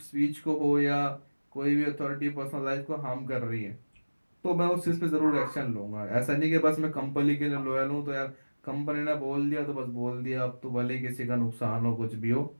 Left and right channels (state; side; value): inverted; both; correlation -1.00